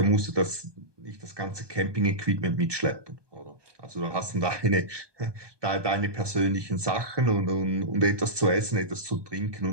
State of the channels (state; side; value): late; left; 1.2 ms